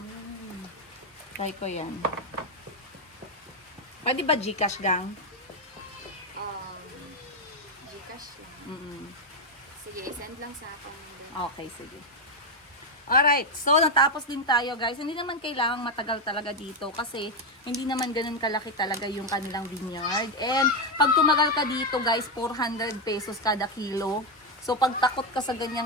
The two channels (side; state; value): both; normal; correlation 0.05